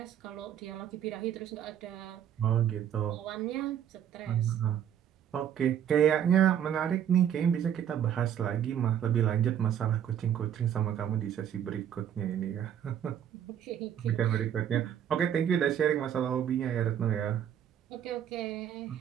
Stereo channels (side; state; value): left; quieter; 9.6 dB